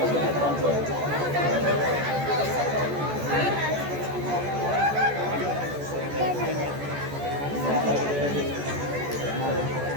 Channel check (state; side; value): late; left; 14 ms